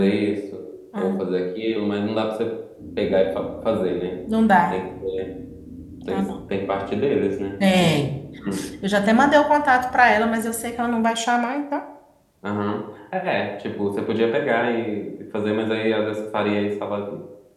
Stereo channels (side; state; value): both; identical; correlation 1.00